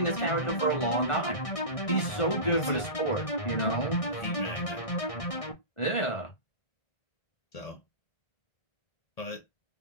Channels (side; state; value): right; late; 1.4 ms